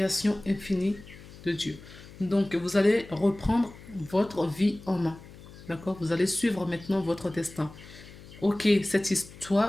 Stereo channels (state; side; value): noise; left; hum, 18 dB below the sound